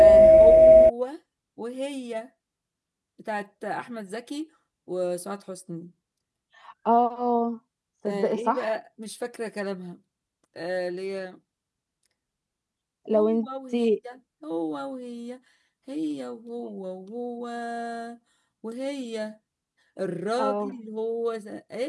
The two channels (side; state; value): both; identical; correlation 1.00